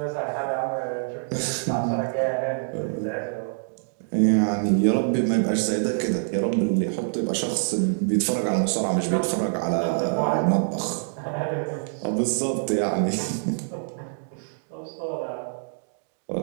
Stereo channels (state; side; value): silent; left; digital silence